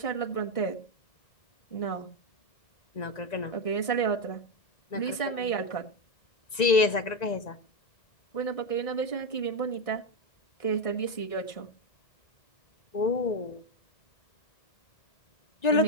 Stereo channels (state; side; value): late; right; 1.9 ms